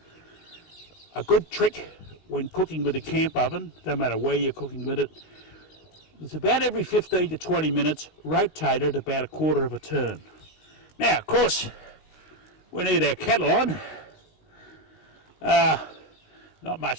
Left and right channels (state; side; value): late; right; 19 ms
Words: A good trick when cooking with a camp oven, no matter where you're cooking with it, it's about every 15 to 20 minutes, rotate it about a quarter of a turn. Now, of course, we need our kettle on. Not